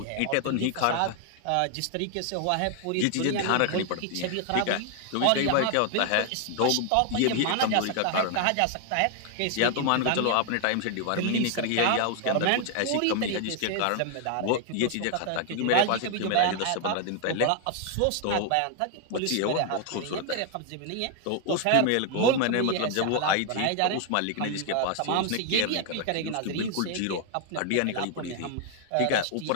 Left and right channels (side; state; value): both; different; correlation 0.00